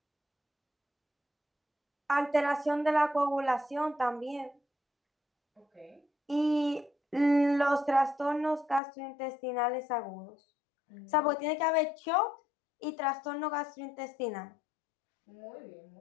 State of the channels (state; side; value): drops out; right; at 8.8 s